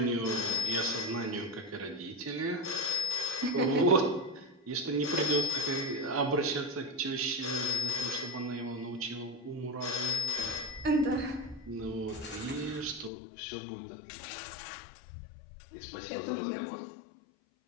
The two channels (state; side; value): drops out; right; at 13.1 s